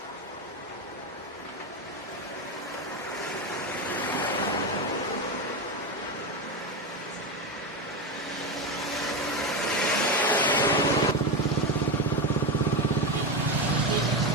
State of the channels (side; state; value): both; normal; correlation 0.14